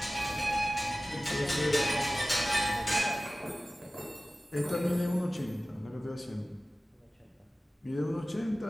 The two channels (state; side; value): normal; both; correlation 0.96